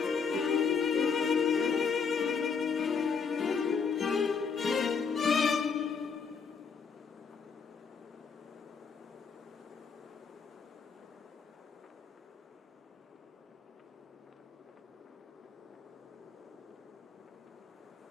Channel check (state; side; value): quieter; right; 5.7 dB